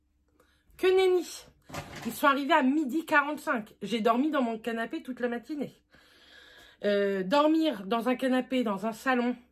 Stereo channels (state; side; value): identical; both; correlation 1.00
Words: Que nenni. Ils sont arrivés à 12h45. J'ai dormi dans mon canapé toute la matinée. Dormir dans un canapé, dans un salon,